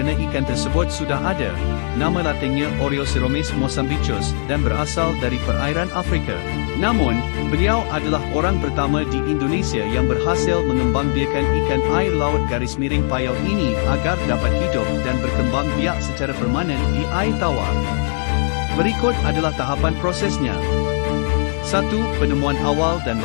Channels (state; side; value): silent; right; 55 dB below the other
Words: ikan tersebut sudah ada. Nama latinnya Oreoceromis mozambicus dan berasal dari perairan Afrika. Namun, beliau adalah orang pertama di Indonesia yang berhasil mengembangbiakkan ikan air laut garis miring payau ini agar dapat hidup dan berkembang biak secara permanen di air tawar. Berikut adalah tahapan prosesnya. 1. Penemuan awal dan